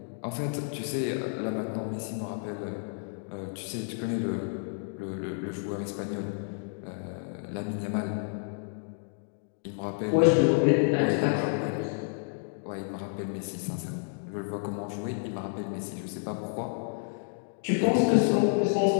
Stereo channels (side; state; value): right; silent; 58 dB below the other